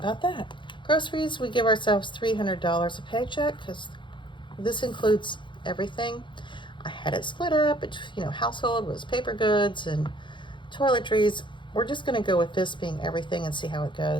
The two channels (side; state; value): right; late; 0.23 ms